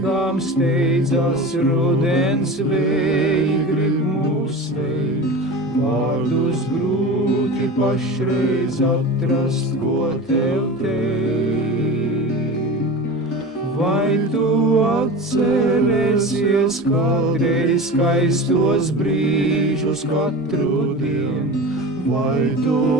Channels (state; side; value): normal; both; correlation 0.31